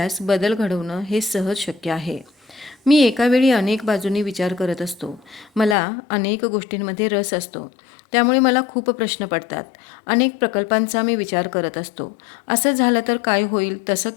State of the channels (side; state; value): right; drops out; at 5.8 s